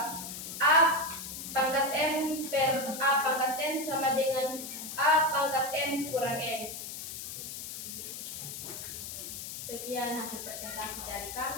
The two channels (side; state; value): left; noise; hiss, 8 dB below the sound